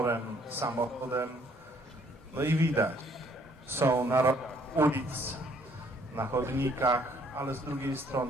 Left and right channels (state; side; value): normal; both; correlation 0.63